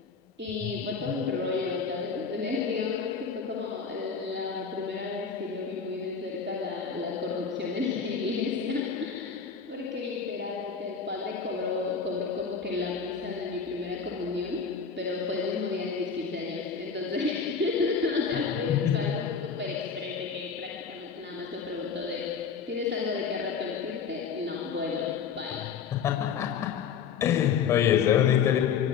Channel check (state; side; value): quieter; right; 6.3 dB